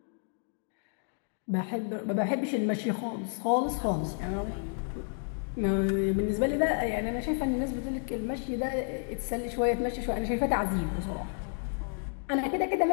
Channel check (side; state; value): right; silent; 57 dB below the other